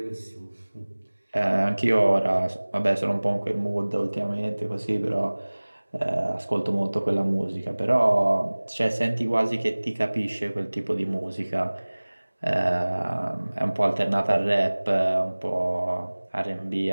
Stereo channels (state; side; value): inverted; both; correlation -1.00